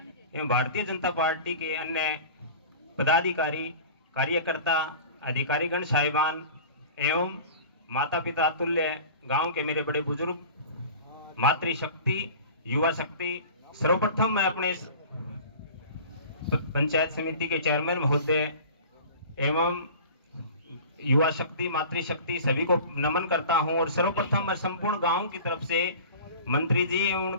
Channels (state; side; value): inverted; both; correlation -0.40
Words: एवं भारतीय जनता पार्टी के अन्य पदाधिकारी, कार्यकर्ता, अधिकारीगण साहिबान एवं माता पिता तुल्य गांव के मेरे बड़े बुजुर्ग, मातृशक्ति, युवा शक्ति, सर्वप्रथम मैं अपने पंचायत समिति के चेयरमैन महोदय एवं युवा शक्ति, मातृशक्ति सभी को नमन करता हूं। और सर्वप्रथम मैं संपूर्ण गांव की तरफ से मंत्री जी एवं